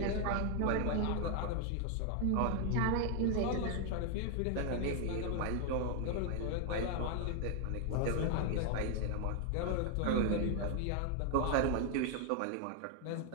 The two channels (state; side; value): different; both; correlation 0.00